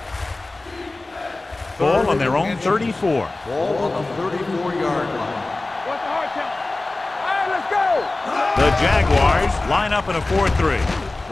Ball on their own 34. Ball on the 34-yard line. What's the hard count? All right, let's go. The Jaguars line up in a 4-3.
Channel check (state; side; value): quieter; right; 3.1 dB